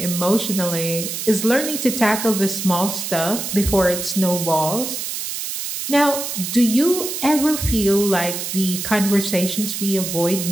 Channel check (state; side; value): noise; right; hiss, 5 dB below the sound